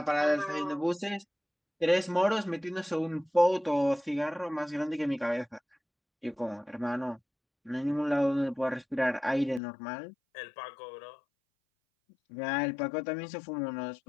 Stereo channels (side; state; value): right; drops out; at 9.6 s